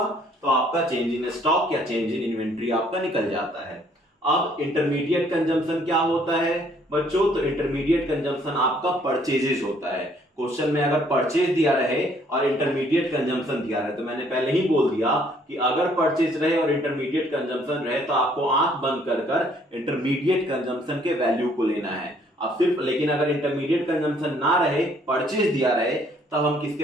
तो आपका चेंज इन स्टॉक या चेंज इन इन्वेंट्री आपका निकल जाता है। अब इंटरमीडिएट कंजम्पशन क्या होता है बच्चों? तो इंटरमीडिएट कंजम्पशन आपका परचेजेज होता है। क्वेश्चन में अगर परचेज दिया रहे और इंटरमीडिएट कंजम्पशन दिया रहे, तो मैंने पहले ही बोल दिया कि अगर परचेज रहे और इंटरमीडिएट कंजम्पशन रहे तो आपको आंख बंद कर कर इंटरमीडिएट कंजम्पशन के वैल्यू को लेना है। अब सिर्फ लेकिन अगर इंटरमीडिएट कंजम्पशन ना रहे, परचेज दिया रहे, तब हम किसके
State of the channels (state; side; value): normal; both; correlation 0.63